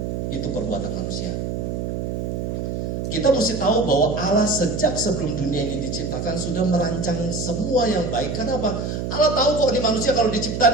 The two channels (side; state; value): right; noise; hum, 3 dB below the sound